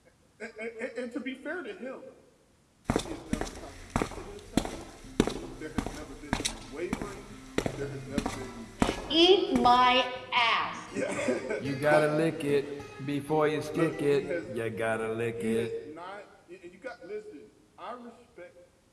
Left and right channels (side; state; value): both; identical; correlation 1.00